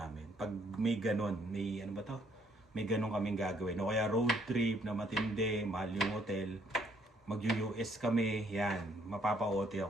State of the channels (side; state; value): both; normal; correlation 0.67